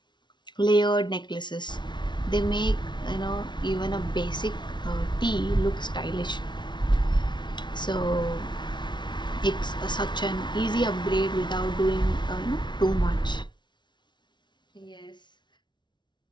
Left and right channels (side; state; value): right; late; 0.22 ms